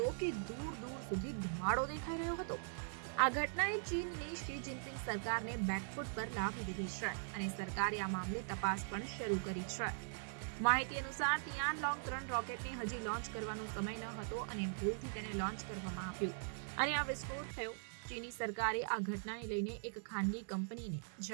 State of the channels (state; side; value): silent; left; digital silence